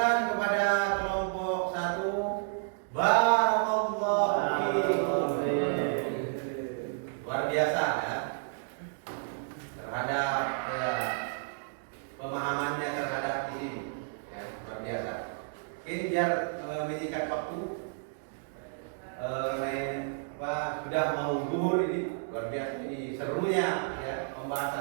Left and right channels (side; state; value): left; silent; digital silence